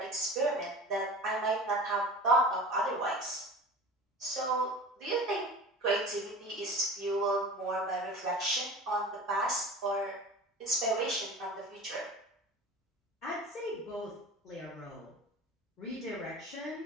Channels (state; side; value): normal; both; correlation 0.37